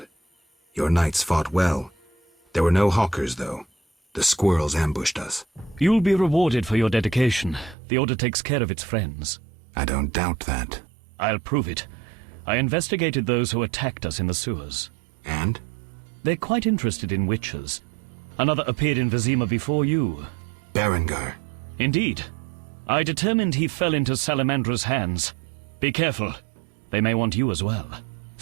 Your knights fought well. There were no hawkers, though. The squirrels ambushed us. You'll be rewarded for your dedication. The Order takes care of its friends. I don't doubt that. I'll prove it. I investigated those who attacked us in the sewers. And? They're quite interested in witches. Another appeared in Vizima before you. Berengar. Indeed. I determined he fell into Salamandra's hands. Be careful. They may want you as well.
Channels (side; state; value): left; drops out; at 7.8 s